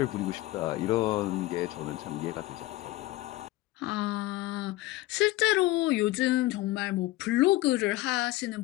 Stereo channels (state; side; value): quieter; right; 17.9 dB